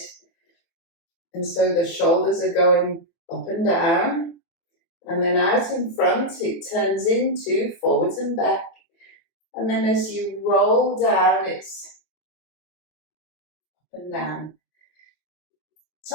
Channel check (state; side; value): late; right; 24 ms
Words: And so the shoulders are going up and down. And then out in front, it turns into forwards and back. And then as you roll down, it's up and down.